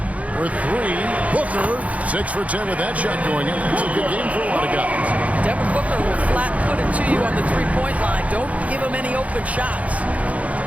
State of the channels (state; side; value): late; left; 0.067 ms